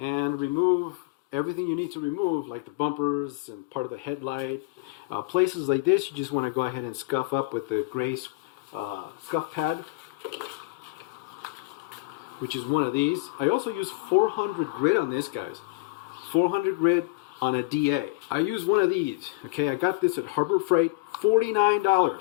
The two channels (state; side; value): quieter; right; 22.1 dB